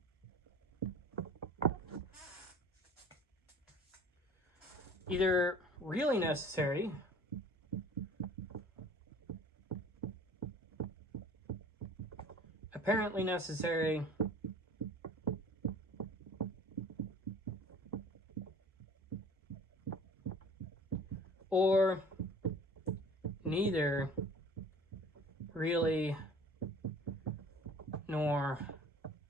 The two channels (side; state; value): both; normal; correlation 0.46